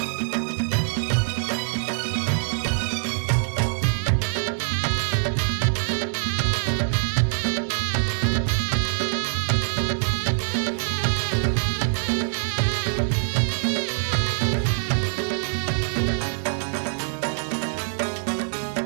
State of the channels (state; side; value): silent; left; digital silence